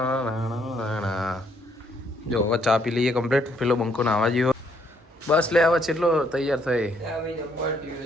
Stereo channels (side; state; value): both; normal; correlation 0.70